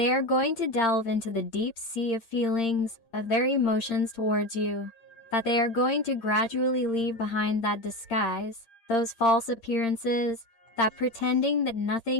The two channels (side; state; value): right; late; 8.7 ms